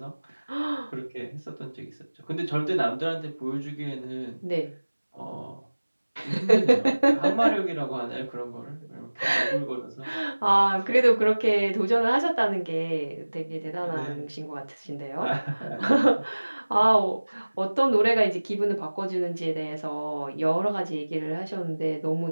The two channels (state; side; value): inverted; both; correlation -1.00